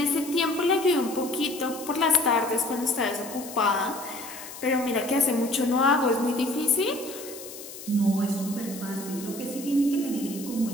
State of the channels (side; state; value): left; noise; hiss, 13 dB below the sound